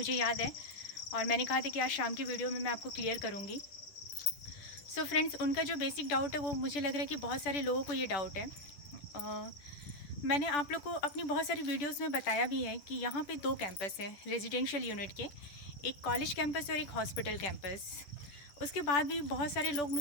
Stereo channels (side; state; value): right; late; 10 ms